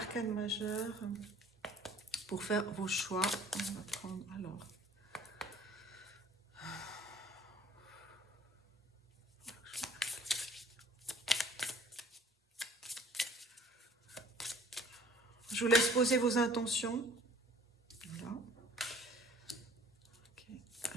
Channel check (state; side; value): normal; both; correlation 0.54